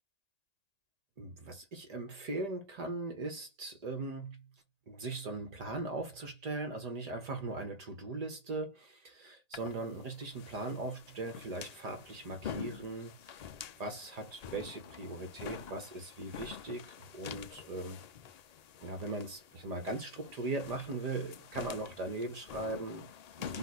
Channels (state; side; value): late; left; 1.8 ms